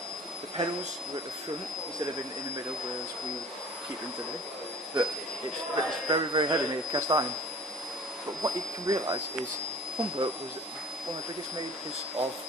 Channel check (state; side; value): normal; both; correlation 0.45